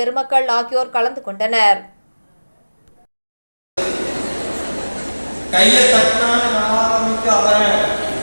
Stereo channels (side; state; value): both; inverted; correlation -1.00